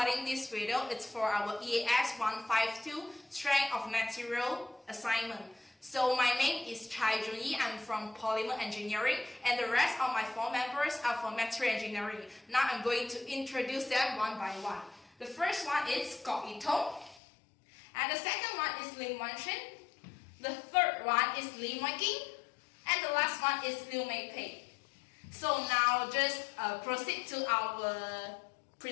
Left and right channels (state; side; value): drops out; right; at 17.2 s